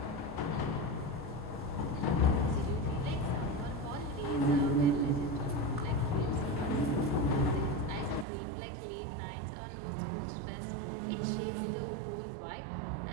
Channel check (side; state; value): left; drops out; at 8.2 s